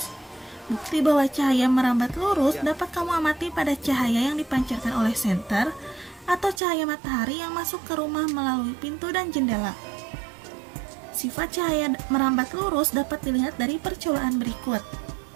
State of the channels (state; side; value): drops out; left; at 6.6 s